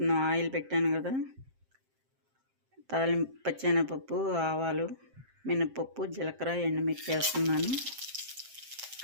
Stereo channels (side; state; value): left; late; 7.6 ms